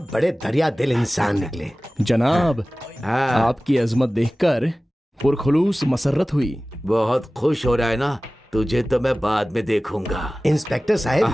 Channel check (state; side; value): normal; both; correlation 0.97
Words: बड़े दरिया दिल इंसान निकले। जनाब आपकी अजमत देखकर पुरखुलूस मसरत हुई। बहुत खुश हो रहा है ना, तुझे तो मैं बाद में देखूंगा। इंस्पेक्टर